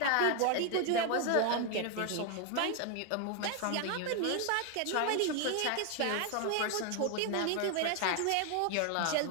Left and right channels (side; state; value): both; different; correlation 0.00